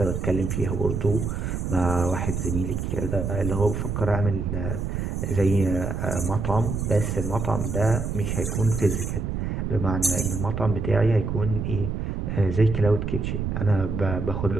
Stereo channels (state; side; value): noise; right; rumble, 2 dB below the sound